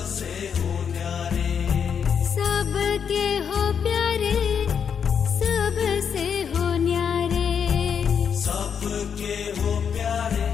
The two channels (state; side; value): quieter; right; 7.2 dB